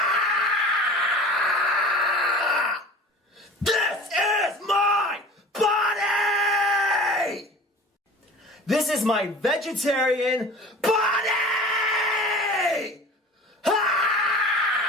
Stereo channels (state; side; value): normal; both; correlation 0.39